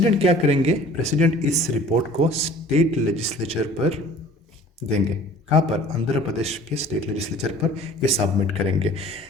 क्या करेंगे? प्रेसिडेंट इस रिपोर्ट को स्टेट लेजिस्लेचर पर देंगे। कहाँ पर? आंध्र प्रदेश के स्टेट लेजिस्लेचर पर ये सबमिट करेंगे।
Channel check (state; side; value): normal; both; correlation 0.48